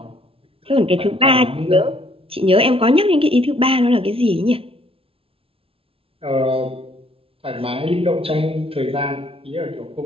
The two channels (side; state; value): left; late; 0.27 ms